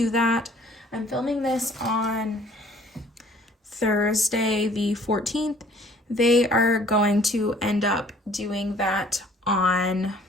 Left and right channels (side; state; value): both; normal; correlation 0.56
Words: that. I'm filming this on Thursday the 14th. They are going to end up doing that on